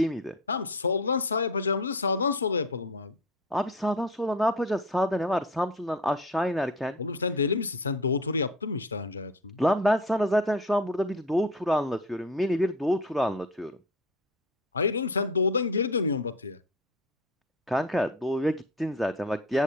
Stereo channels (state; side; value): normal; both; correlation 0.34